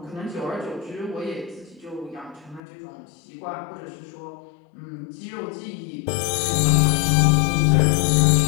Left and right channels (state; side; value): drops out; right; at 2.6 s